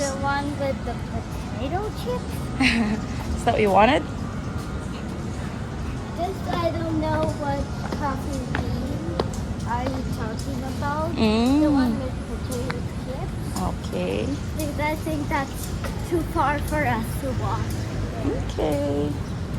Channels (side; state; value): both; identical; correlation 1.00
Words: one with the potato chips? Is that what you wanted? This I don't know what coffee bean are you talking about. The one with potato chips. Okay. Because I think that's too far for us to walk. Okay.